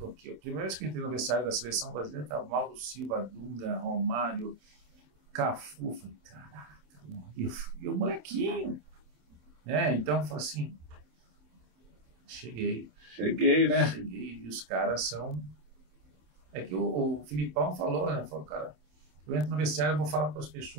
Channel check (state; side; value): late; left; 27 ms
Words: aqui. A primeira vez que eu entrei no vestiário da seleção brasileira, estava Mauro Silva, Dunga, Romário, Cafu. Falei, caraca, e o molequinho. Então eu falei assim, cheguei, né? Cheguei, e os caras são... É que o Filipão falou, né? Falou, cara, eu entro no vestiário, eu vou falar para as